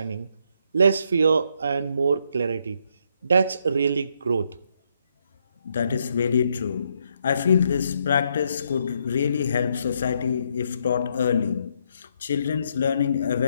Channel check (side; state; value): both; inverted; correlation -0.75